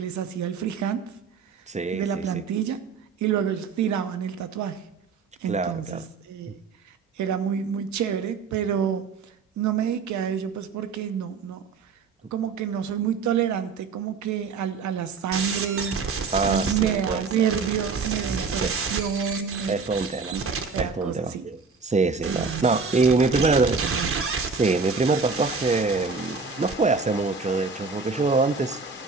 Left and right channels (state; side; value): quieter; left; 4.9 dB